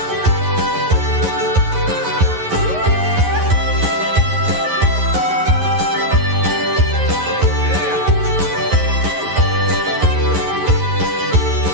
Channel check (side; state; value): left; late; 11 ms